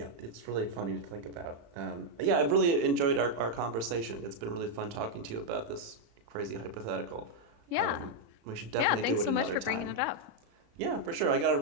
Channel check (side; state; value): left; late; 35 ms